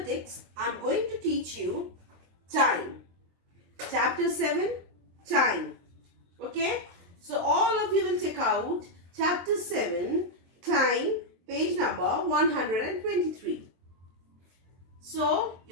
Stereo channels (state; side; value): late; left; 23 ms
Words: I'm going to teach you time. Chapter 7, time. Okay? So all of you will check out chapter 7, time, page number 123. So